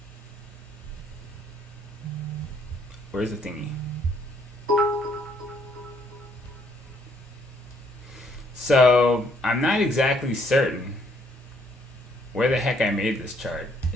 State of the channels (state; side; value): normal; both; correlation 0.67